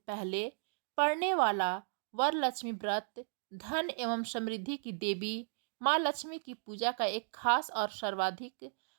पड़ने वाला वरलक्ष्मी व्रत धन एवं समृद्धि की देवी माँ लक्ष्मी की पूजा का एक खास और सर्वाधिक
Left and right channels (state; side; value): silent; left; digital silence